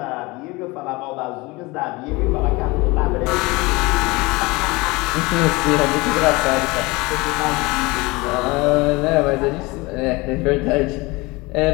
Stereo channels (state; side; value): quieter; right; 23.6 dB